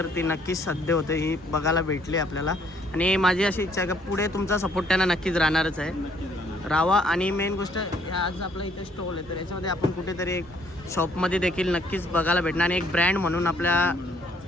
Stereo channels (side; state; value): both; normal; correlation 0.65